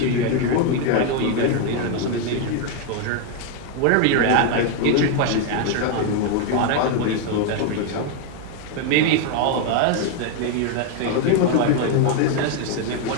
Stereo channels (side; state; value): both; different; correlation 0.01